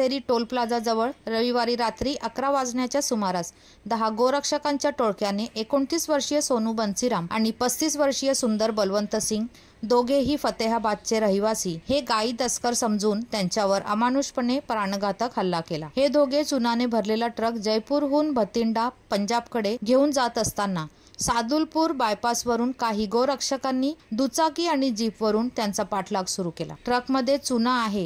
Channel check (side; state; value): both; identical; correlation 1.00